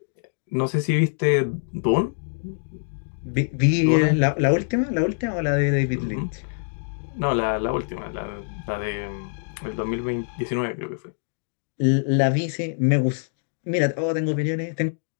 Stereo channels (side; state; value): right; silent; digital silence